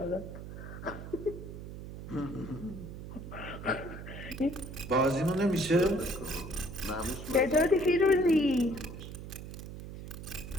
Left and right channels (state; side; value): noise; right; hum, 10 dB below the sound